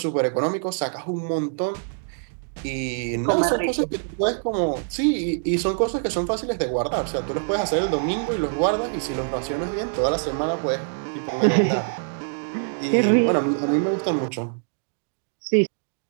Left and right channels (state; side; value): silent; left; digital silence